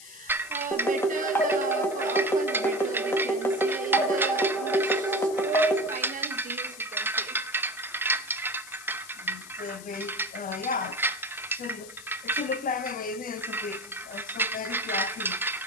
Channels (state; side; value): noise; left; hiss, 16 dB below the sound